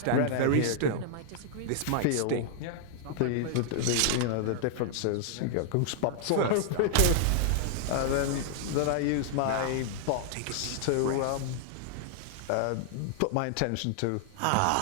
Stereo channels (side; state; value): both; different; correlation -0.01